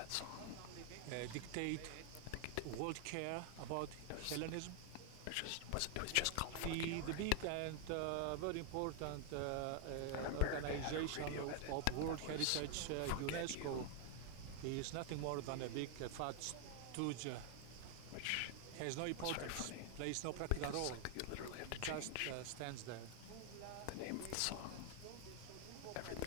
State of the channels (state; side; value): different; both; correlation 0.00